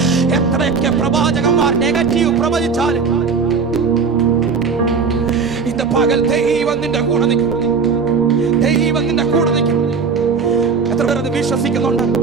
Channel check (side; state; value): left; quieter; 5.3 dB